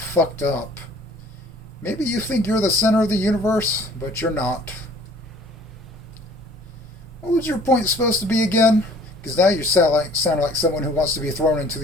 up. Maybe you think you're the center of the universe, but you're not. What was your point supposed to be again? Because now you sound like someone who wants to be thrown into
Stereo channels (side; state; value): both; normal; correlation 0.53